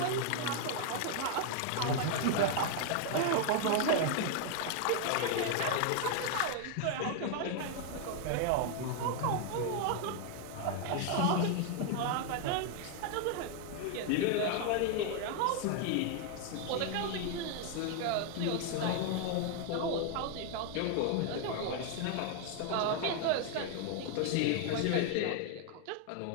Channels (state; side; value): different; both; correlation 0.00